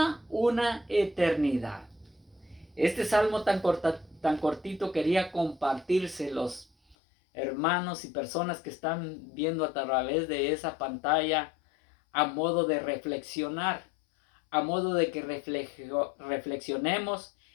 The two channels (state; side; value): drops out; right; at 7.0 s